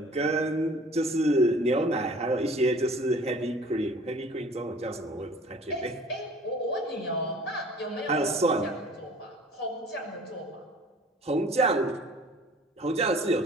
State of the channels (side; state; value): both; normal; correlation 0.49